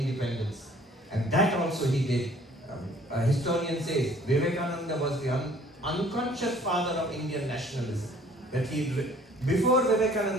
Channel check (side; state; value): both; normal; correlation 0.55